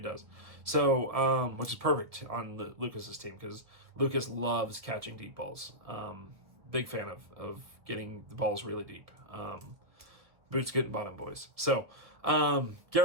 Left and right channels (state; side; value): late; left; 1.5 ms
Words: does. So, which is perfect on Lucas's team because Lucas loves catching deep balls. Big fan of getting the balls really deep. Boots getting bottom, boys. So,